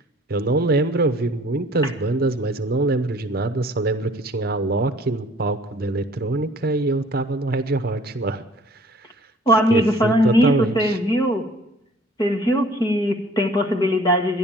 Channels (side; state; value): both; normal; correlation 0.54